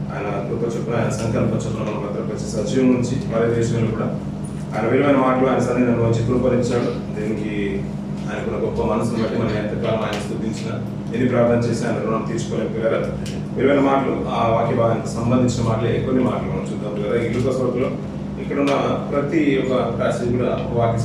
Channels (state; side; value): identical; both; correlation 1.00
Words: ఆయన కృప చొప్పున, ఆయన సంకల్ప చొప్పున మనం భద్రపరిచి సజీవం నుంచి వాళ్ళ దేశంలో కూడా ఆయన విలువైన మాటలు ఆయన సన్నిధిని వచ్చి కృపరించాడు. దీనికి ఆయనకున్న గొప్ప మనసును బట్టి మనం ఎంతకాలం ఆయన స్తుతించిన, ఎన్ని ప్రార్థన చేసి ఆయన రుణం తీర్చుకోలేము. పిల్లరా, విలువైన మాటలు, ఆ వాక్య భాగానికి సంబంధించిన మాటలే కొన్ని మాటలు మనం చూద్దాం. పిల్లరా, ఈ లూకా సువార్తలో ఇక్కడున్న ప్రతి ఒక్క ప్యాసేజ్ కూడా వాక్య